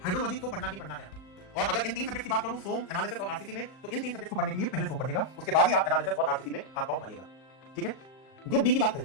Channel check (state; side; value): late; right; 38 ms